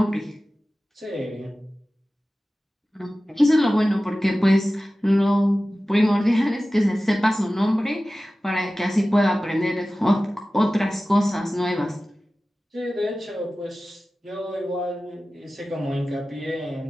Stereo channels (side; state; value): both; normal; correlation 0.96